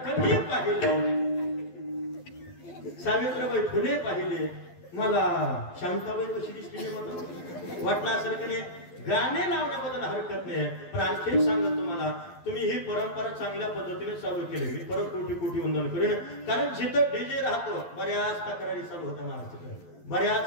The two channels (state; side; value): late; right; 12 ms